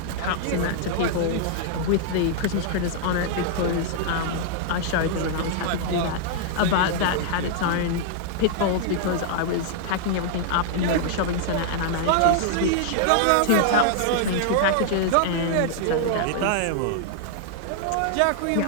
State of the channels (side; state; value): both; different; correlation -0.01